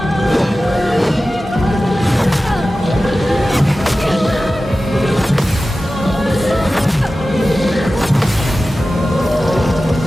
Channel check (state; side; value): normal; both; correlation 0.95